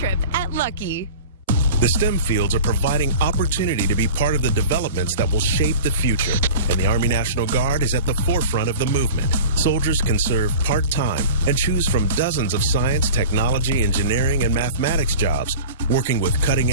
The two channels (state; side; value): inverted; both; correlation -0.37